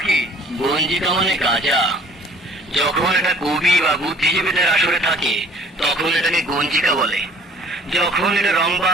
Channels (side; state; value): both; normal; correlation 0.52